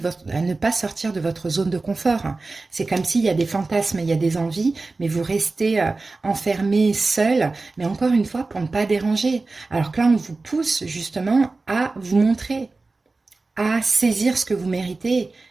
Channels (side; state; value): left; quieter; 3.6 dB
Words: sortir de votre zone de confort. C'est comme s'il y a des fantasmes, il y a des envies, mais vous restez enfermé, seul, mais encore une fois, pour ne pas déranger. Alors que là, on vous pousse justement à vous montrer, à saisir ce que vous méritez